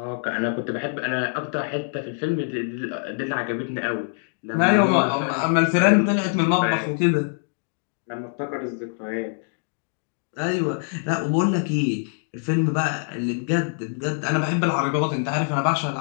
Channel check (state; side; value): silent; right; 62 dB below the other